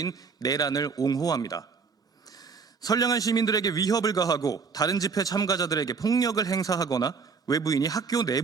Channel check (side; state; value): left; quieter; 5.3 dB